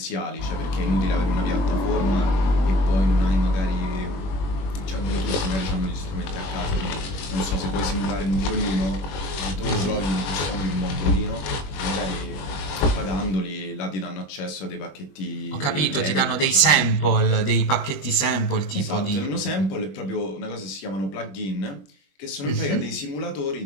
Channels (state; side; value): late; right; 21 ms